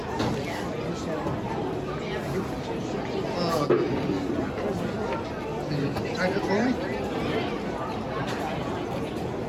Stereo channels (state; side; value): identical; both; correlation 1.00